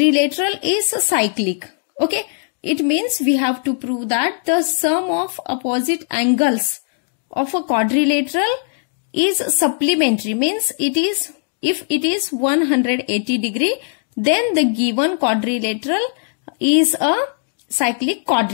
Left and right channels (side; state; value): right; silent; 58 dB below the other